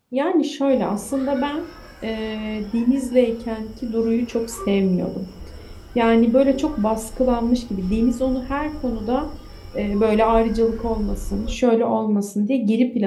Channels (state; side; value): identical; both; correlation 1.00